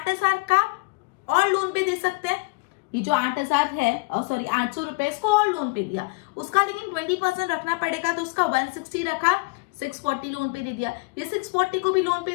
का और लोन पे दे सकते हैं, ये जो 8000 है, सॉरी 800 रुपए इसको और लोन पे दिया, उसका लेकिन 20% रखना पड़ेगा, तो उसका 160 रखा, 640 लोन पे दे दिया, ये 640 को भी लोन पे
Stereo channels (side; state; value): right; quieter; 27.4 dB